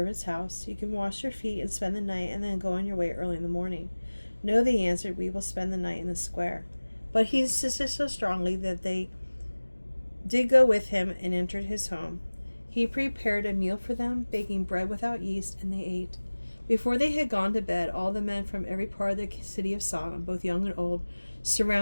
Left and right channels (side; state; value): both; inverted; correlation -1.00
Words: house. You can wash your feet and spend the night, and then go on your way early in the morning. No, they answered, we will spend the night in the square. But he insisted so strongly that they did go with him and entered his home. He prepared a meal for them, baking bread without yeast, and they ate. Before they had gone to bed, all the men from every part of the city of Sodom, both young and old,